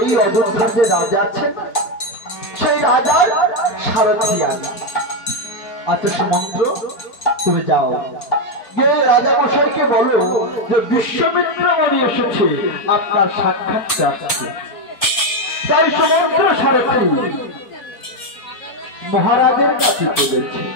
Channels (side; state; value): right; late; 4.3 ms